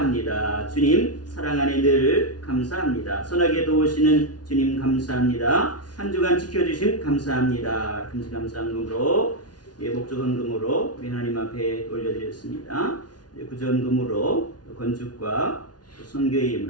주님 사랑 안에 늘 감사합니다. 선하게 도우시는 주님 감사합니다. 한 주간 지켜주신 감사합니다. 금시 감사함으로 목적헌금으로 우리 하나님 앞에 올려드렸습니다. 구전금으로 건축과 선교의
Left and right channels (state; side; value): late; right; 0.69 ms